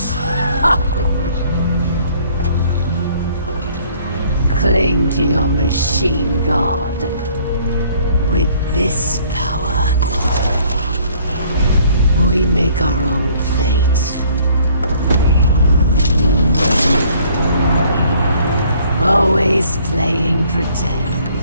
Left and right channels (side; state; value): both; inverted; correlation -0.60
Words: Cling to your machine god. With this power, we make our own fate. Always playing pretend.